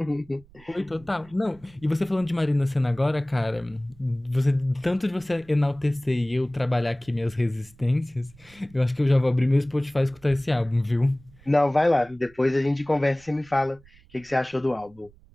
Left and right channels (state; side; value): noise; right; rumble, 26 dB below the sound